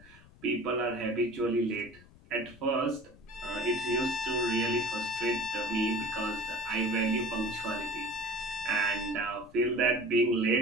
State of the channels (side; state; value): left; noise; rumble, 23 dB below the sound